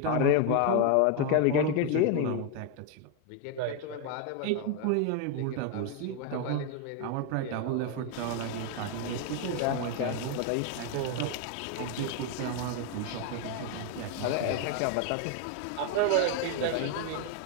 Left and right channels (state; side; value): different; both; correlation 0.01